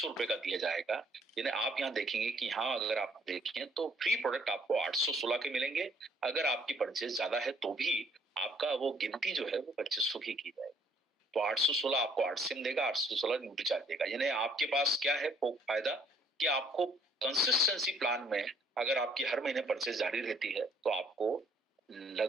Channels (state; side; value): normal; both; correlation 0.63